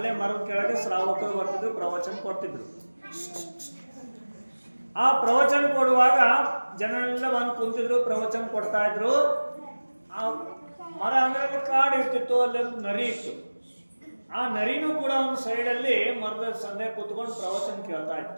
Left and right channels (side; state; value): both; inverted; correlation -1.00